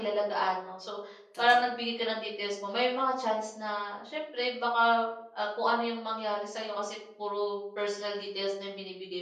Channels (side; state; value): both; identical; correlation 1.00